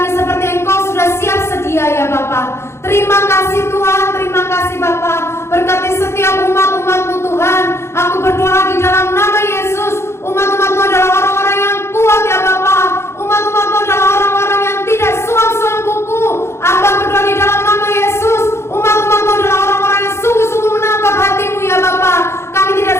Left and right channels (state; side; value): late; right; 0.13 ms